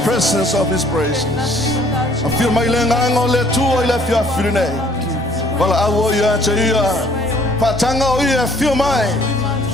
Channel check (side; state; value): both; normal; correlation 0.59